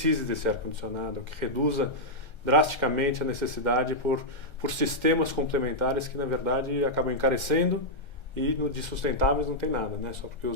desse ar-condicionado, que reduza drasticamente a necessidade por sistemas complementares que, na verdade, acabam encarecendo e de sustentáveis não tem nada, né? Só porque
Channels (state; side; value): late; right; 1.3 ms